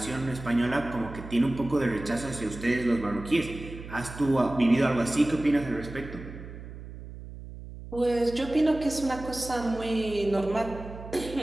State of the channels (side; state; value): right; noise; hum, 13 dB below the sound